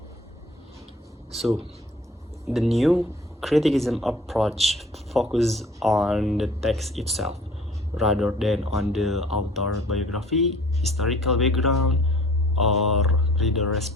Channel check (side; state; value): both; normal; correlation 0.51